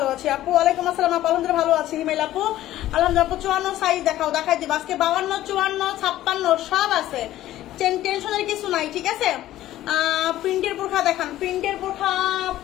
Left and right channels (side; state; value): right; quieter; 14.1 dB